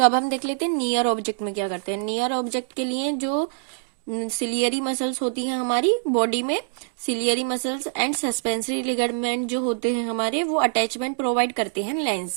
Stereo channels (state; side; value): silent; left; digital silence